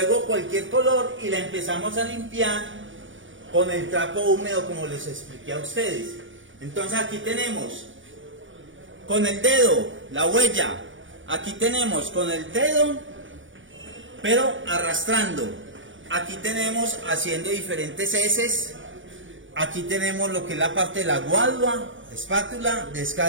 cualquier color y la empezamos a limpiar con el trapo húmedo como les expliqué a ustedes. Entonces aquí tenemos con el dedo la huella, aquí tenemos con el dedo pero arrastrando. Aquí tenemos haciendo diferentes heces. Aquí tenemos lo que es la parte de la guadua, espátula,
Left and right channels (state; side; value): late; left; 0.56 ms